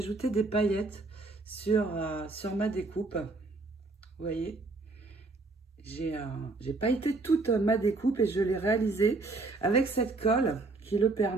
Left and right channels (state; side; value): quieter; left; 3.4 dB